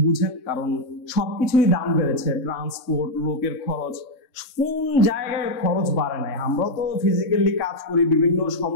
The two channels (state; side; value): late; right; 3.6 ms